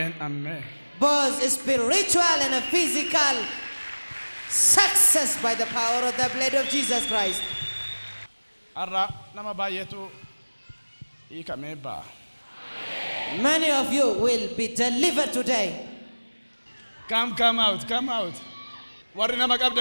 Both spiritual and physical success by the power of the blood of Jesus Christ. Many of you will be delivered today. Come out.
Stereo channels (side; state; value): both; inverted; correlation -1.00